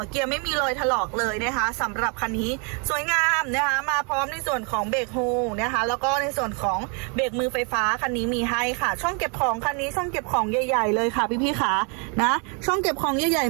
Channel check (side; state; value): left; quieter; 36.0 dB